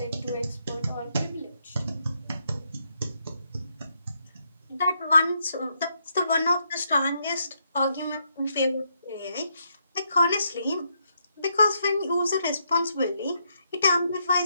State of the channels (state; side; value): inverted; both; correlation -0.77